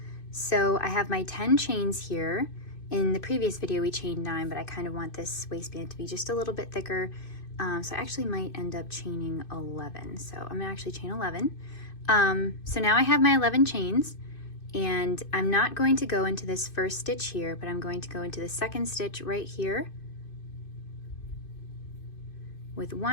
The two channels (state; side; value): late; right; 2.6 ms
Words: So I have my 10 chains here. In the previous video we chained 9, but I kind of want this waistband to be just a little bit thicker. So I actually might end up chaining 11. So I'm gonna actually chain 11. So now I have my 11 chains, and I'm not going to go into this first stitch here, but I'm going to go into the second stitch right here with